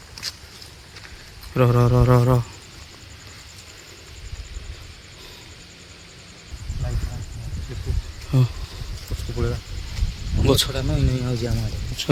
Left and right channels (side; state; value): both; identical; correlation 1.00